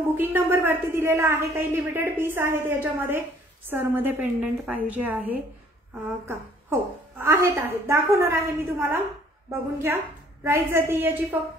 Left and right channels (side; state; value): both; normal; correlation 0.59